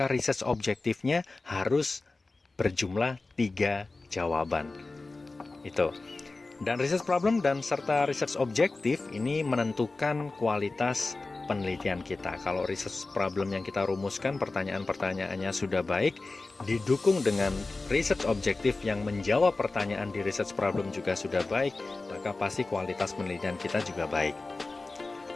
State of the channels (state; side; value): quieter; right; 3.5 dB